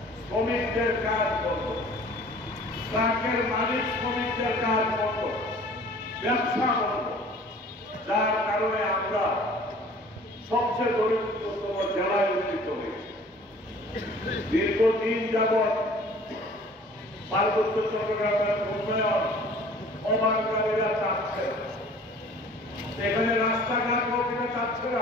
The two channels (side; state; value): both; normal; correlation 0.49